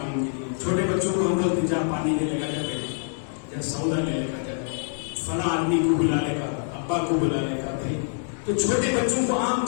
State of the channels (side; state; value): right; silent; digital silence